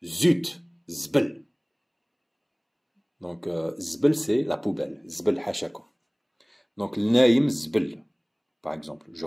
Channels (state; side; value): identical; both; correlation 1.00